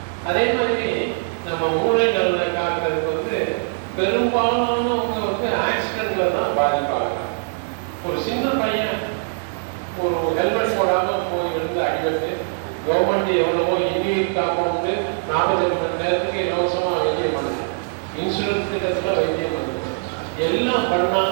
அதே மாதிரி நம்ம மூளை நலனை காக்கிறதுக்கு வந்து பெரும்பாலானவங்க வந்து ஆக்சிடென்ட்ல தான் பாதிப்பாங்க. ஒரு சின்ன பையன் ஒரு ஹெல்மெட் போடாம போய் இருந்து அடிபட்டு கவர்மெண்ட் எவ்வளவோ இன்னுயிர் காப்போம்னு 48 மணி நேரத்துக்கு இலவசமா வைத்தியம் பண்ணுது. இன்சூரன்ஸ் திட்டத்துல வைத்தியம் பண்ணுது. எல்லாம்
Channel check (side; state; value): left; silent; digital silence